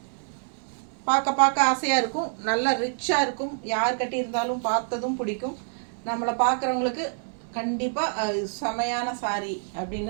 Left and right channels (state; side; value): silent; left; digital silence